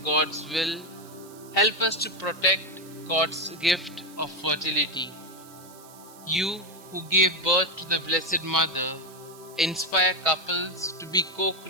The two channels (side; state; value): right; noise; hiss, 22 dB below the sound